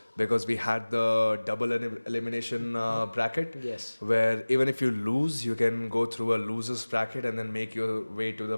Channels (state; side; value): inverted; both; correlation -1.00